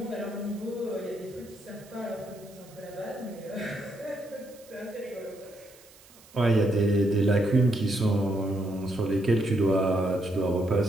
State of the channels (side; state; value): right; noise; hiss, 24 dB below the sound